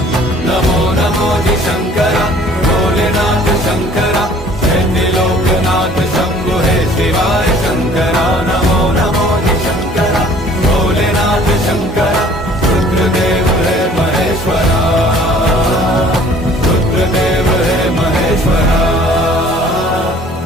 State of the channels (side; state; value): both; normal; correlation 0.53